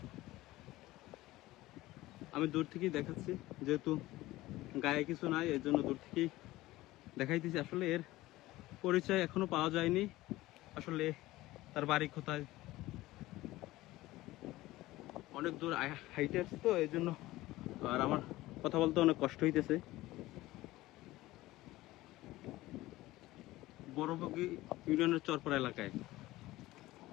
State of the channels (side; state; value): right; quieter; 17.7 dB